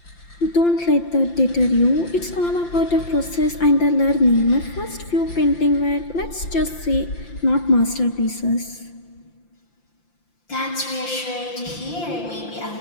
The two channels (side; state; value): right; late; 5.8 ms